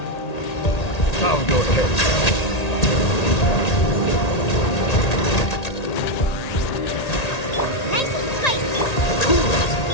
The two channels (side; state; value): right; late; 1.8 ms